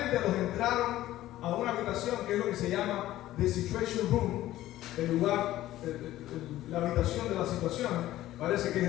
los entraron a una habitación que es lo que se llama The Situation Room, el lugar, la habitación de la situación. Parece que es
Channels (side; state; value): right; quieter; 14.7 dB